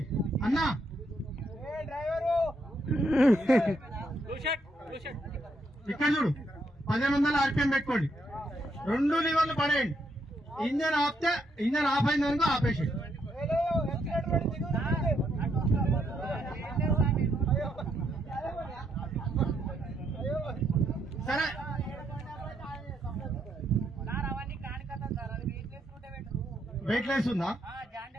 అన్నా ఇక్కడ చూడు 1500 RPM పెట్టుకోండి 2 లివర్లు పడేయండి ఇంజన్ ఆపితే ఇంజన్ ఆఫ్ అయిందనుకో ఆపేసి సరే వెయిట్ లెస్ ఉందా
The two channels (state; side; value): normal; both; correlation 0.76